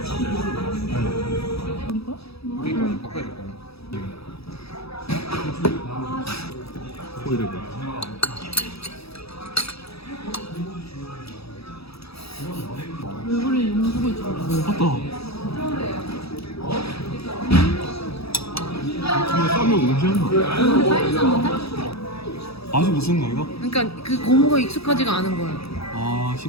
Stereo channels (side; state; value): right; late; 0.77 ms